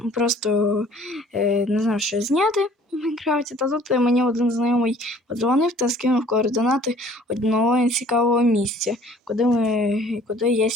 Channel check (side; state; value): both; normal; correlation 0.53